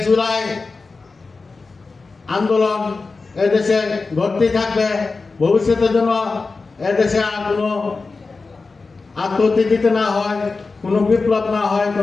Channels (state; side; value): quieter; right; 4.1 dB